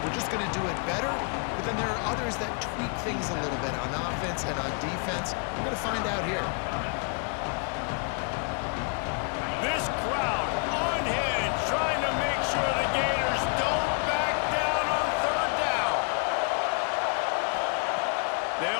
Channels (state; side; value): quieter; right; 39.8 dB